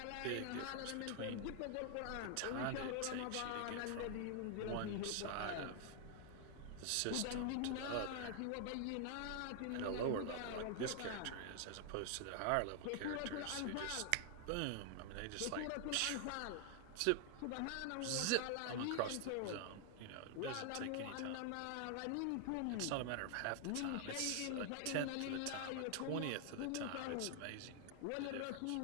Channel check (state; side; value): different; both; correlation 0.00